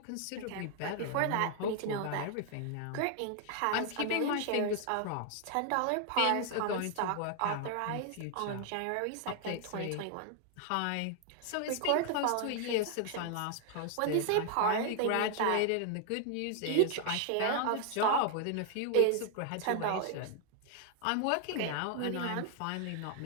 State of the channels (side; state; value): both; different; correlation 0.00